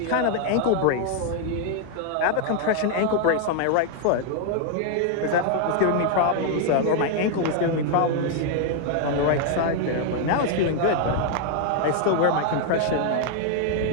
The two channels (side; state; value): both; different; correlation 0.00